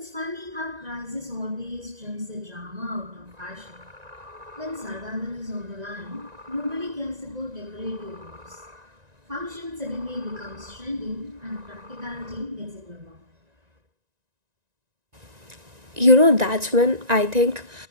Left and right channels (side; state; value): left; late; 1.9 ms